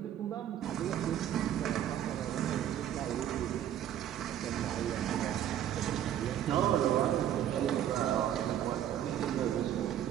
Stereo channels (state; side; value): quieter; left; 10.9 dB